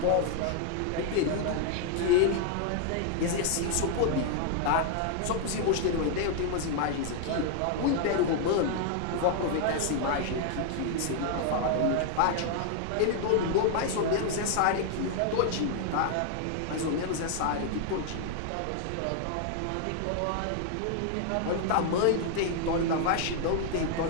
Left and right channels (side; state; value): both; different; correlation 0.00